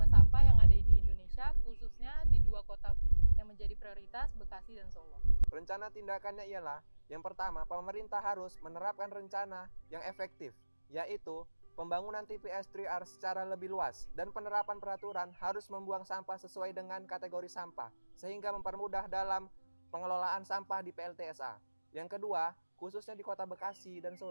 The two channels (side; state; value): both; inverted; correlation -1.00